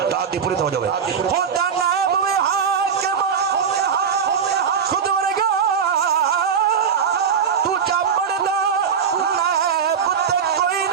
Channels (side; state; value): left; quieter; 6.9 dB